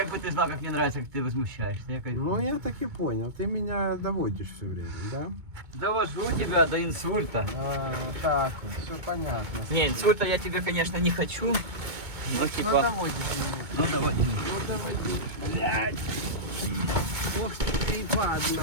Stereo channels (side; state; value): left; late; 2.2 ms